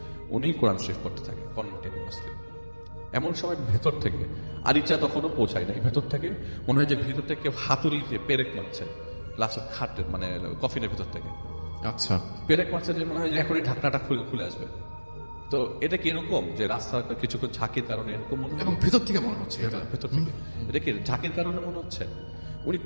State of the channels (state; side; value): inverted; both; correlation -1.00